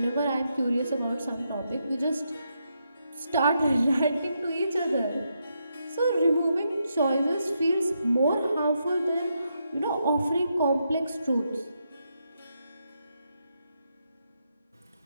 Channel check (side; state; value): both; inverted; correlation -0.81